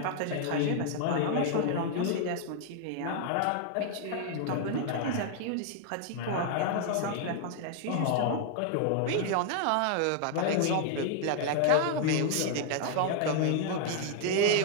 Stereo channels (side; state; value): both; different; correlation 0.00